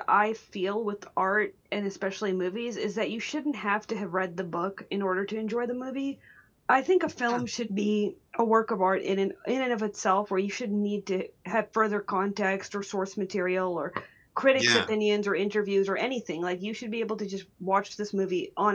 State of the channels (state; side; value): identical; both; correlation 1.00